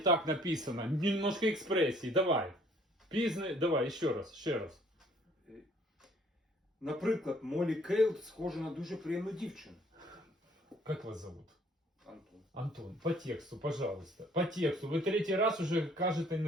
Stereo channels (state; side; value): normal; both; correlation 0.59